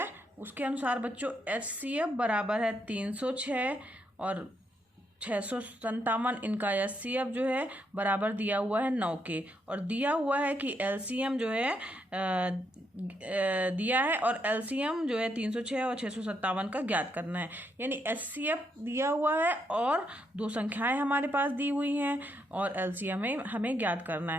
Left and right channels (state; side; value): normal; both; correlation 0.78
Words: उसके अनुसार बच्चों HCF बराबर है 306 और 657। इनका HCF जो है बराबर दिया हुआ है 9 के, और दिया हुआ है कि LCM जो है दिया है, और LCM जो है 306 और 657 का ज्ञात करना है। यानी HCF दिया हुआ है और दो संख्याएं हमारे पास दी हुई हैं, और LCM हमें ज्ञात करना